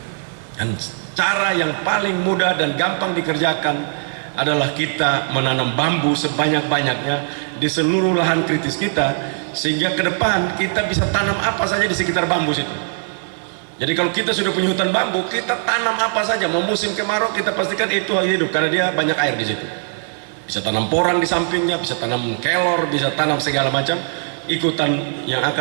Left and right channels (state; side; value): silent; left; 61 dB below the other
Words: Dan cara yang paling mudah dan gampang dikerjakan adalah kita menanam bambu sebanyak-banyaknya di seluruh lahan kritis kita, sehingga ke depan kita bisa tanam apa saja di sekitar bambu situ. Jadi kalau kita sudah punya hutan bambu, kita tanam apa saja. Mau musim kemarau kita pastikan itu hidup karena dia banyak air di situ. Bisa tanam porang di sampingnya, bisa tanam kelor, bisa tanam segala macam ikutan yang